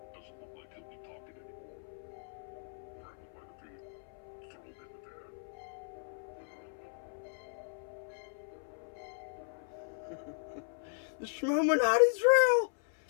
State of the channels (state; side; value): silent; right; 53 dB below the other